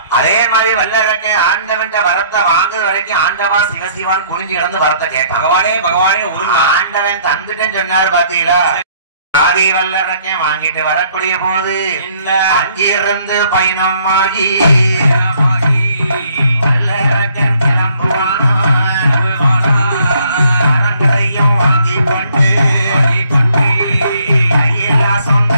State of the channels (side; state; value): both; inverted; correlation -0.63